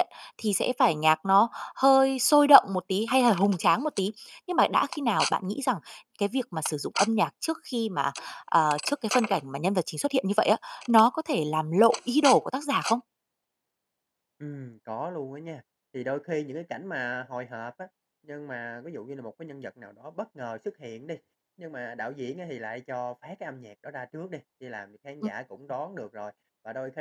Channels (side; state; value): both; identical; correlation 1.00